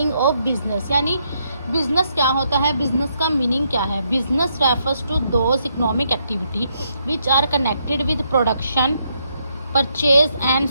ऑफ बिजनेस, यानी बिजनेस क्या होता है, बिजनेस का मीनिंग क्या है। Business refers to those economic activity which are connected with production, purchase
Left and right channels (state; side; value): inverted; both; correlation -0.76